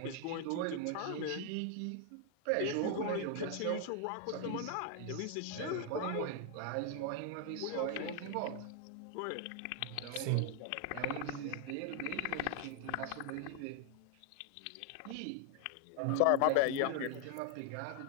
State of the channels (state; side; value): different; both; correlation 0.00